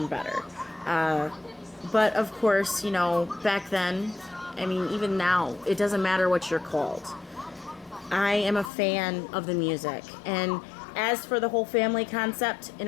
better. But of course, you know, back then, I mean, even now, it doesn't matter what you're called. I am a fan of the music. And as for the whole family concept, in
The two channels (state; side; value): drops out; right; at 8.7 s